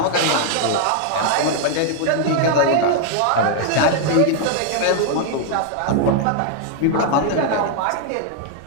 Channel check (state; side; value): different; both; correlation 0.00